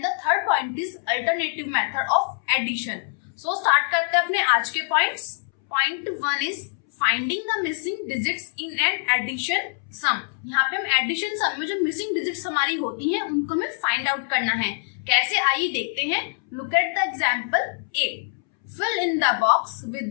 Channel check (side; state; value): right; silent; 62 dB below the other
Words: the third point is alternative method of addition. So start करते हैं अपने आज के points. Point 1 is finding the missing digits in an addition sum. यहाँ पे हम addition सम में जो मिसिंग डिजिट्स हमारी होती हैं उनको हमें फाइंड आउट करना है। कैसे, आइए देखते हैं। Look at the example A. Fill in the box